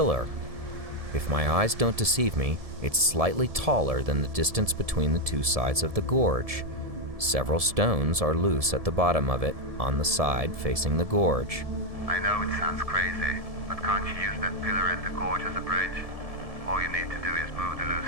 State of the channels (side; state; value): left; late; 1.7 ms